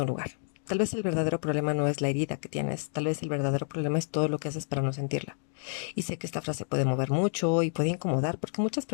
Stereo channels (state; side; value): silent; right; digital silence